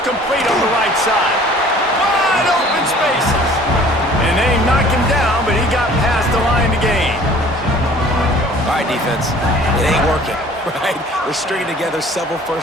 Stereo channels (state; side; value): normal; both; correlation 0.51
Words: complete on the right side. Wide open spaces. And they knocked him down, but he got past the line to gain. All right, defense. It ain't working, right? We're stringing together several